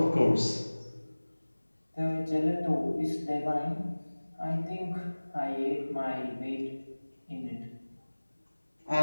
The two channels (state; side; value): inverted; both; correlation -1.00